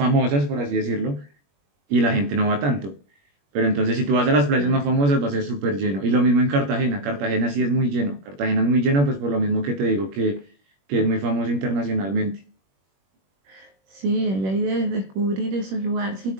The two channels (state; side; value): late; left; 21 ms